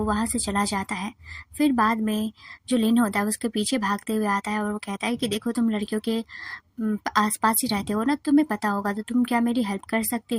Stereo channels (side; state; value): both; identical; correlation 1.00